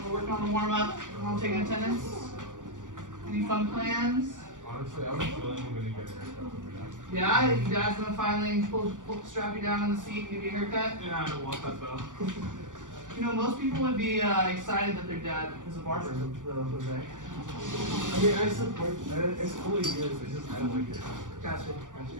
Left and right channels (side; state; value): left; late; 0.87 ms